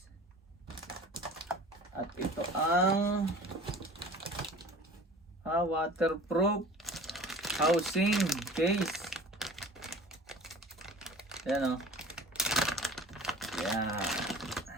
At ito ang waterproof housing case. Yan o. Yan.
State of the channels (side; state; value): both; normal; correlation 0.43